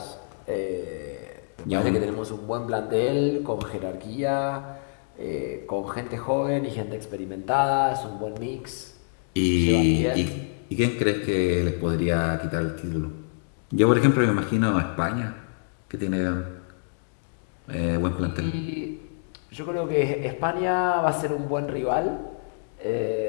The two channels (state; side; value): silent; right; digital silence